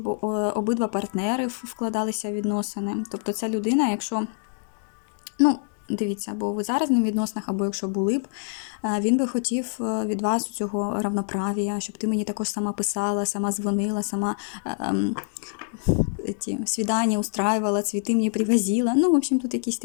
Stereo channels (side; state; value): right; silent; 61 dB below the other